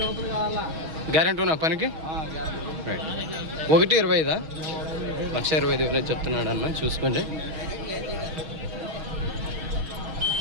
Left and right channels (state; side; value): late; left; 6.3 ms